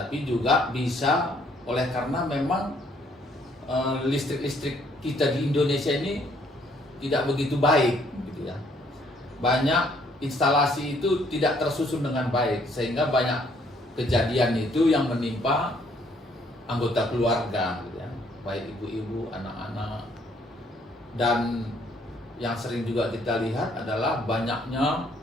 juga bisa oleh karena memang listrik-listrik kita di Indonesia ini tidak begitu baik gitu ya. Banyak instalasi itu tidak tersusun dengan baik sehingga banyak kejadian itu yang menimpa anggota keluarga gitu ya, baik ibu-ibu, anak-anak. Dan yang sering juga kita lihat adalah banyaknya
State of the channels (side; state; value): both; normal; correlation 0.66